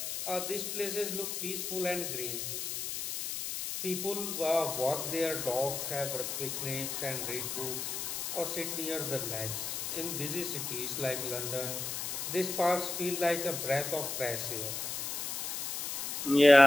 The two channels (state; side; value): noise; left; hiss, 3 dB below the sound